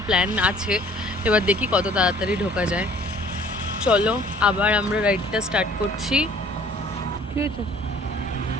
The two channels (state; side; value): normal; both; correlation 0.54